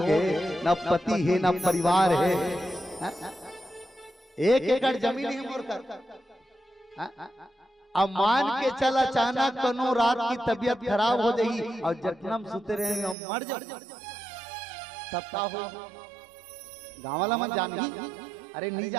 है ना पति है ना परिवार है। 1 एकड़ जमीन है मोर कर। अब मान के चल अचानक कनो रात की तबीयत खराब हो जाई और जखनम सुते रहे और मर जाओ तब का हो। गाँव वाला मन जान ही अरे नहीं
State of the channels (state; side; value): drops out; left; at 13.2 s